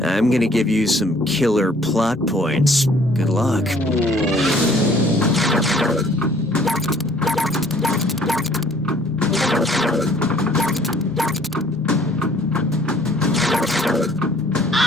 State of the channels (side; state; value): both; normal; correlation 0.57